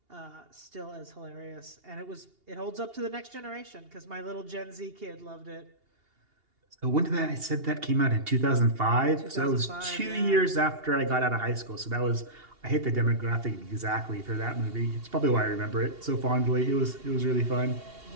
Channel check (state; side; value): late; left; 2.8 ms